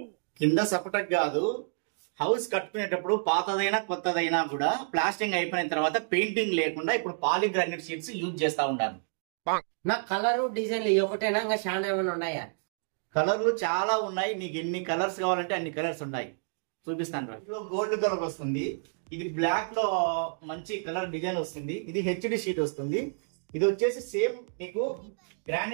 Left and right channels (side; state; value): left; silent; digital silence